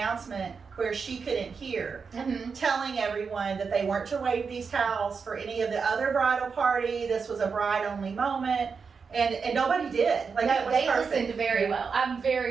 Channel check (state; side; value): quieter; left; 5.5 dB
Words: where she couldn't hear, Mhm. telling everyone that they weren't to wave these towels for any of the other bridal party. This was a bride-only moment. And nobody did. Like, it No, was they perfect. listened very well. I'm